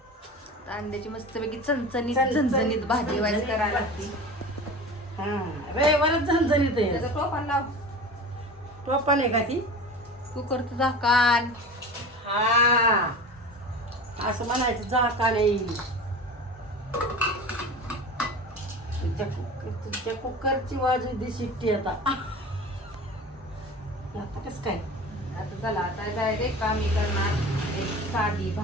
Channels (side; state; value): both; normal; correlation 0.34